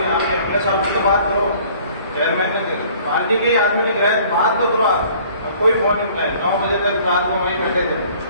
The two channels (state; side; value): inverted; both; correlation -0.54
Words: आप अपने साहब से तो बात करो, चेयरमैन ने पार्टी के ही आदमी ने गिराया बात तो करो। कोई फोन नहीं उठाया, 9 बजे तक रात को वहीं बैठे थे।